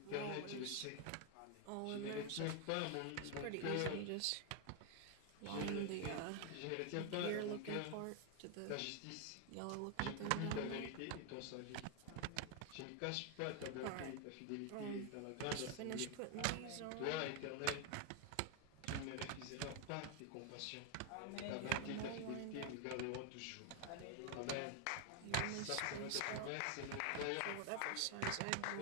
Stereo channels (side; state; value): both; different; correlation 0.01